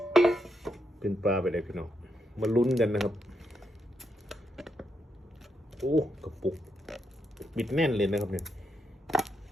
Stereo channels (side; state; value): both; normal; correlation 0.81